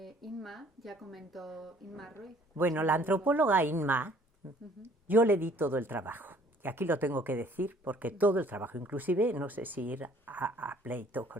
Inma ya comentó, Inma Ruiz. Bueno, la antropóloga Inma, yo le di todo el trabajo. Y aquí lo tengo que decir porque todo el trabajo, inclusive no sé si ir a pleito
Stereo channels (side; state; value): both; normal; correlation 0.57